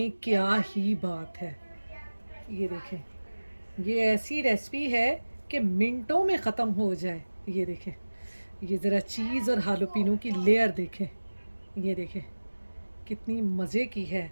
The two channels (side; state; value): both; inverted; correlation -1.00